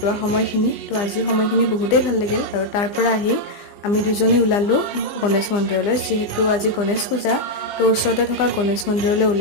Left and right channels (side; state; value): right; late; 20 ms